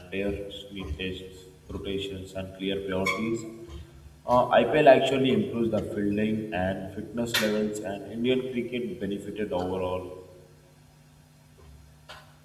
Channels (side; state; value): both; identical; correlation 1.00